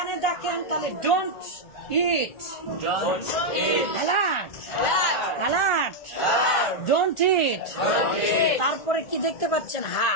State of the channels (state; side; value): late; right; 1.4 ms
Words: দেখেন, তাহলে don't it, alert, alert, don't ইট। তারপরে কি দেখতে পাচ্ছেন? হা,